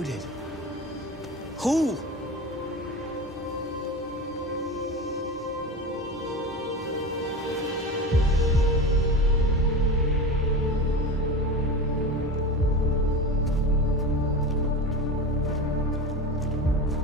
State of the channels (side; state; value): both; normal; correlation 0.27